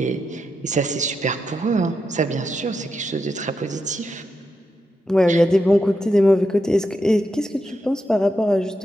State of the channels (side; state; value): both; normal; correlation 0.85